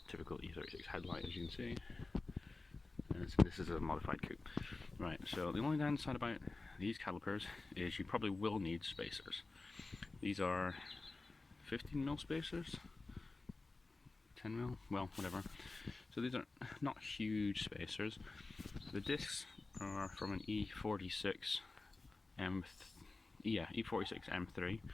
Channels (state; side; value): quieter; right; 3.5 dB